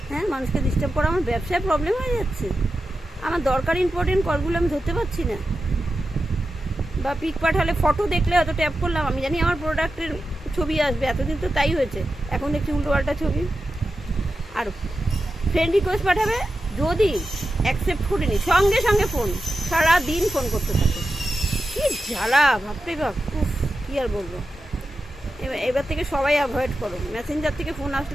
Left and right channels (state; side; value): normal; both; correlation 0.91